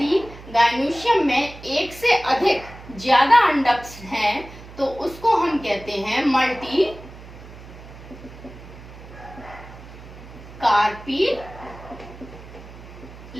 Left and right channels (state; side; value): noise; right; hum, 17 dB below the sound